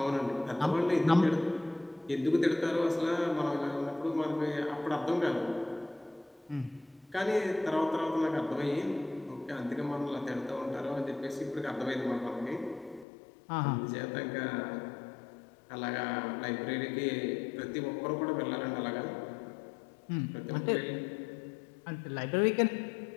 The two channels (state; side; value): drops out; right; at 13.1 s